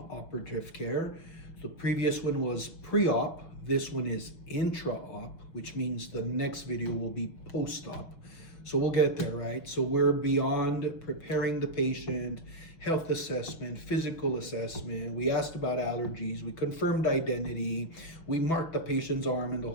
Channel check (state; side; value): late; right; 6.1 ms